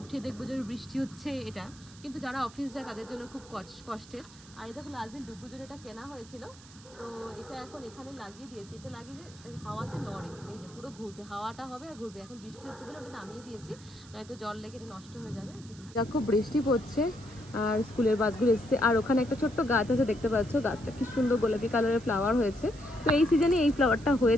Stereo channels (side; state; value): right; noise; hiss, 21 dB below the sound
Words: দেখবো যে বৃষ্টি হচ্ছে, এটা কিন্তু যারা অফিস যায় তাদের জন্য খুব কষ্টের। আর এটা লাস্ট দিন ডুবু জন্য এটা কেনা হয়েছিল, তো এটা এখন এখানে লাগিয়ে দিয়েছি। এটা লাগিয়ে যে হাওয়াতে নড়ে, এই যে পুরো ঘুরবে, হাওয়াটা হবে আর ঘুরবে। এখন বৃষ্টি হচ্ছে বলে ওটা নামিয়ে দিয়েছি, নয়তো জল লেগে এটা নষ্ট হয়ে যাবে। খুব বৃষ্টি পড়ছে আর স্কুলের বাসগুলো এসছে। আর ওখানে একটা ছোট্ট গাছ আছে, দেখতে পাচ্ছ, গাছটা কি সুন্দর গোলাপি কালারের ফ্লাওয়ার হয়েছে। তো এই সিজনে এই ফ্লাওয়ারটা হয়ে